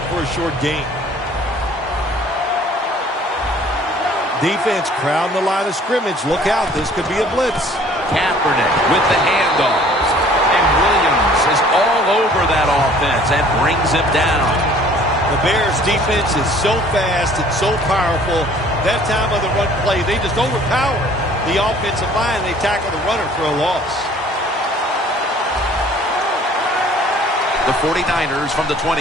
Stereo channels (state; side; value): normal; both; correlation 0.54